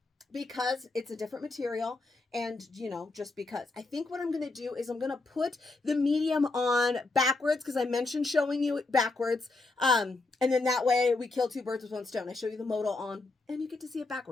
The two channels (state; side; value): quieter; right; 3.4 dB